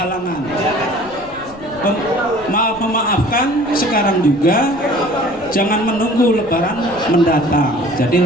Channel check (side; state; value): left; noise; rumble, 21 dB below the sound